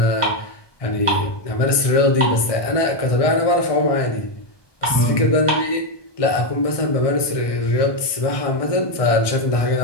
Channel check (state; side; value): late; right; 1.2 ms